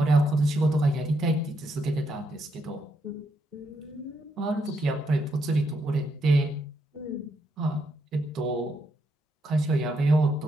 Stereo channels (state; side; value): normal; both; correlation 0.78